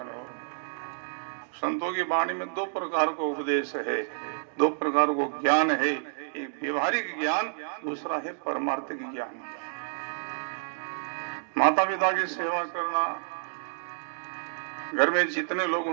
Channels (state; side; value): silent; left; digital silence